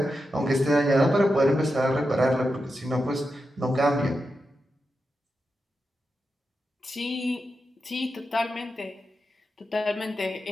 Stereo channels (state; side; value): normal; both; correlation 0.88